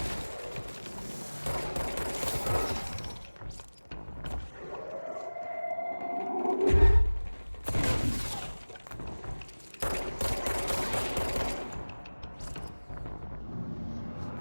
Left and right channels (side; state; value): both; inverted; correlation -1.00